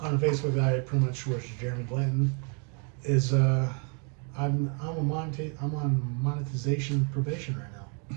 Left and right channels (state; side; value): quieter; left; 38.1 dB